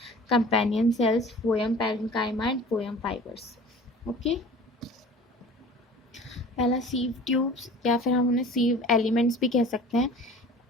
companion cells, phloem parenchyma and phloem fibres. Okay, पहला सीव ट्यूब्स, या फिर हम उन्हें सीव एलिमेंट्स भी कह सकते हैं।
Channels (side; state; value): both; normal; correlation 0.43